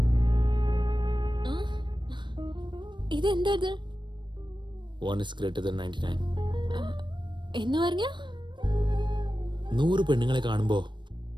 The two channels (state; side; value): late; left; 0.22 ms